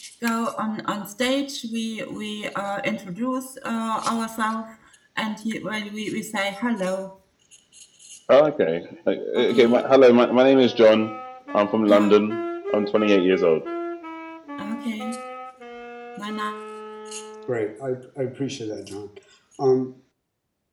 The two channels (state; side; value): identical; both; correlation 1.00